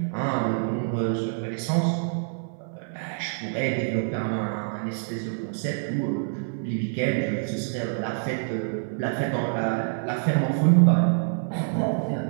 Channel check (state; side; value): silent; left; 58 dB below the other